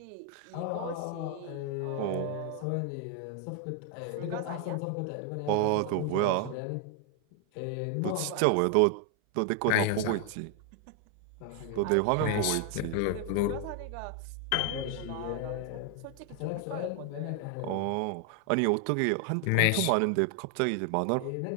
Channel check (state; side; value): different; both; correlation 0.00